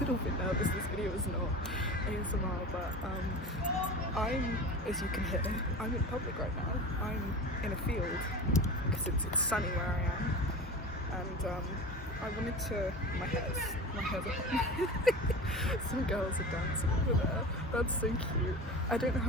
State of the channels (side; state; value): both; normal; correlation 0.32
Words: bit nervous. This video is not ASMR, but I'm, as you can hear, I'm in public right now. I'm in a field because it's sunny where I am, and I wanted to, my hair's on. Some girls are dancing over there. That's so cute. I don't know